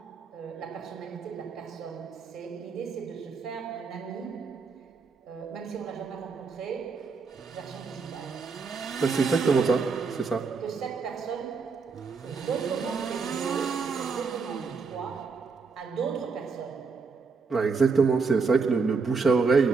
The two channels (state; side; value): quieter; left; 4.9 dB